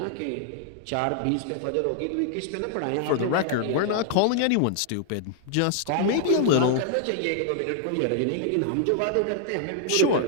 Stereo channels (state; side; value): different; both; correlation 0.00